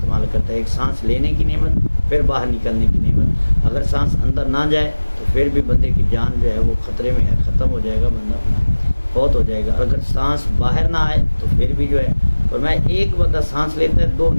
کرتا ہے، ایک سانس لینے کی نعمت، پھر باہر نکلنے کی نعمت۔ اگر سانس اندر نہ جائے تو پھر بھی بندے کی جان جو ہے وہ خطرے میں ہے، ختم ہو جائے گا، بندہ فوت ہو جائے گا۔ اگر سانس باہر نہ آئے تو پھر بھی جو ہے، اور میں ایک بندہ سانس لیتا ہے دو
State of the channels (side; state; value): both; inverted; correlation -1.00